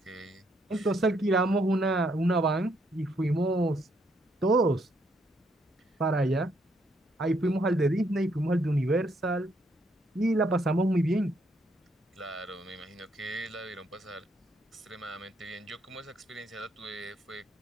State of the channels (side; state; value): both; normal; correlation 0.73